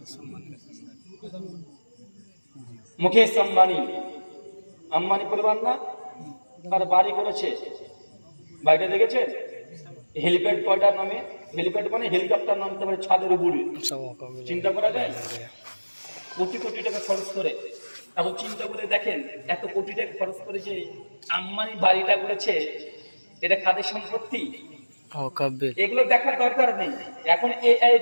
মুকেশ আম্বানি। আম্বানি পরিবার না? তার বাড়ি করেছে, বাড়িটা দেখেছেন? হেলিপ্যাড কয়টার নামে? হেলিপ্যাড মানে হেলিকপ্টার নামতে পারে ছাদের উপরে, চিন্তা করা যায়? কোটি কোটি টাকা খরচ করে। এখন চিন্তা করে দেখেন, এত কোটি টাকা খরচ করে যে আম্বানি বাড়িটা করেছে, এটা কাদের সম্পত্তি? এগুলো দেখার দরকার নেই। এখন এআই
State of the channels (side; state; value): both; inverted; correlation -1.00